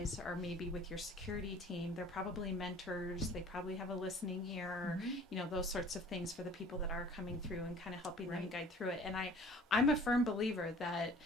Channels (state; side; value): normal; both; correlation 0.49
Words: are maybe with your security team, they're probably mentors, they probably have a listening ear, those sorts of things for the people that are coming through and kind of helping them guide through it. And I'm a firm believer that